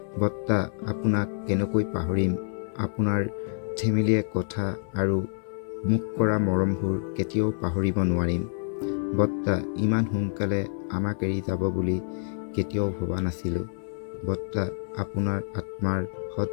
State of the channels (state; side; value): silent; right; 60 dB below the other